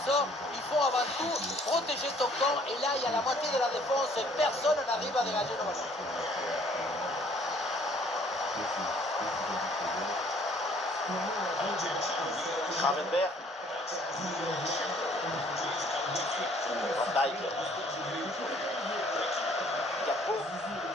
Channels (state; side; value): normal; both; correlation 0.59